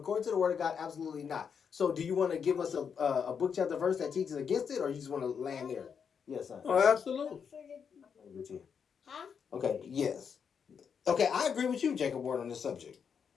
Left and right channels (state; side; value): quieter; right; 6.8 dB